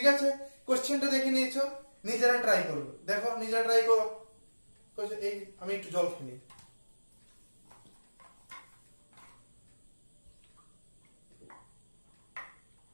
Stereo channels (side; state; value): both; inverted; correlation -1.00